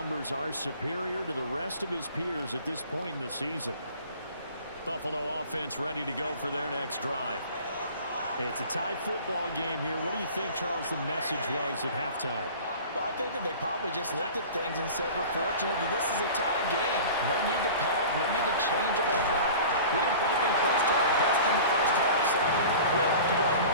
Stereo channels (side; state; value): both; inverted; correlation -0.40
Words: are superior to the rest of his peers at this point in the season. Buffalo offense ready to go for their next drive. It's a tie football game here. What do you think, Charles, the message was at halftime? Well, I think that they probably just looked at things and said, we're fortunate that this is a tie game. No need to panic, no need to change a whole lot. We didn't put anything close to our best in the first half, so we don't have to go out and